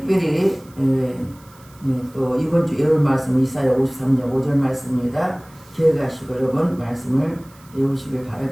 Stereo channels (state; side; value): noise; right; hiss, 27 dB below the sound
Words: 또 이번 주 예언 말씀 이사야 53장 5절 말씀입니다. 기억하시고 여러분 말씀을 외우시길